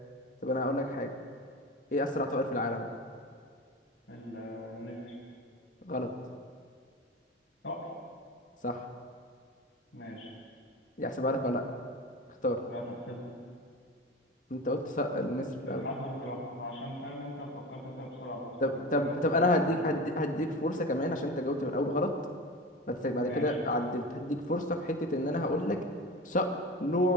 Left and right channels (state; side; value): normal; both; correlation 0.30